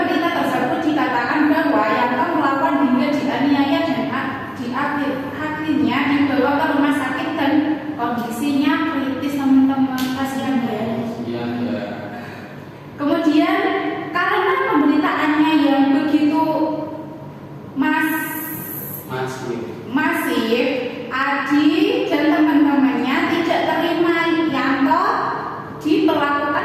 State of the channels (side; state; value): both; identical; correlation 1.00